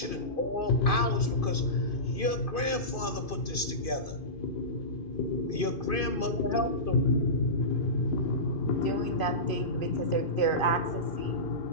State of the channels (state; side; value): late; right; 2.5 ms